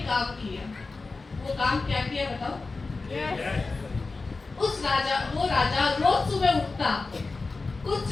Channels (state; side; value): quieter; right; 3.8 dB